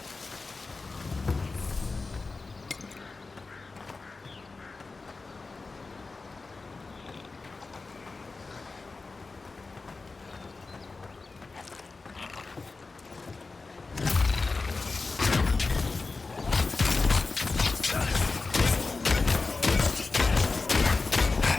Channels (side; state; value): right; quieter; 3.9 dB